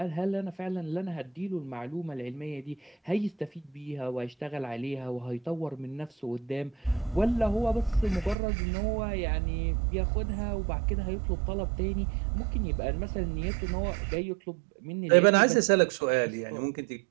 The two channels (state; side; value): drops out; left; at 8.3 s